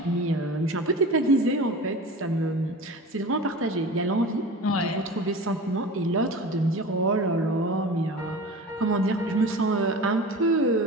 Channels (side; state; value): both; normal; correlation 0.35